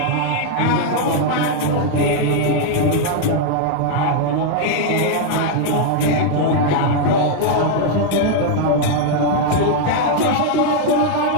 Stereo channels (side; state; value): both; different; correlation 0.00